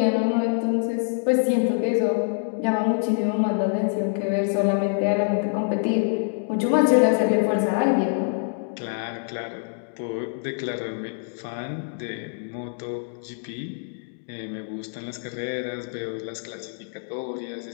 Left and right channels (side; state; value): right; silent; digital silence